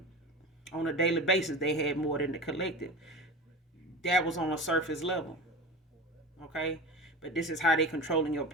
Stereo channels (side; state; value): both; normal; correlation 0.30